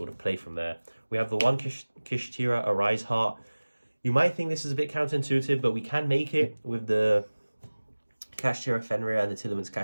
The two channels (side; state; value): both; inverted; correlation -1.00